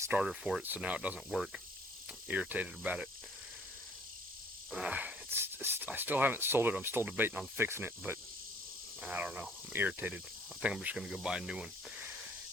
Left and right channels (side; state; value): both; normal; correlation 0.58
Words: for it, so now it doesn't work. I'm irritated about it. I still haven't sold it. I'm still debating on fixing it, but I don't know. I'm irritated. I think I'm just going to go buy a new one.